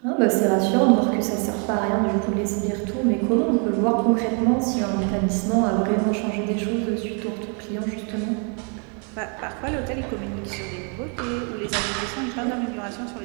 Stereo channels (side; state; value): left; quieter; 38.5 dB